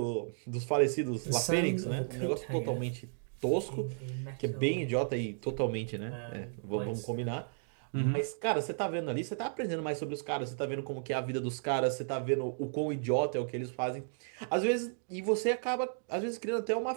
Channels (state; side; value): silent; left; digital silence